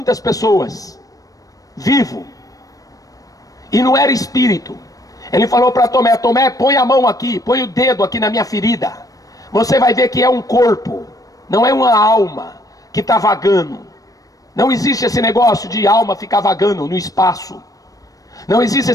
pessoas, vivo, e não era espírito. Ele falou para Tomé: Tomé, põe a mão aqui, põe o dedo aqui na minha ferida. Você vai ver que é um corpo, não é uma alma que está vagando. Não existe esse negócio de alma ficar vagando no espaço. Não existe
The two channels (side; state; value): right; late; 0.17 ms